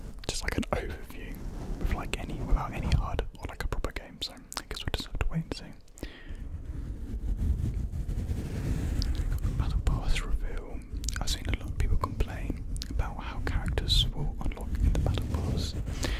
an overview with like without any HUD or like a proper game. So I guess we'll just have to wait and see. Battle Pass reveal. I've seen a lot of people complain about how characters will unlock in the Battle Pass,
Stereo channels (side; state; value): both; identical; correlation 1.00